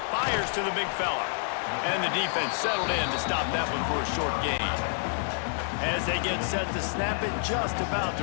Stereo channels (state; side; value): silent; right; 59 dB below the other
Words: Fires to the big fella. And the defense settled in to stop that one for a short gain. As they get set to snap it, just about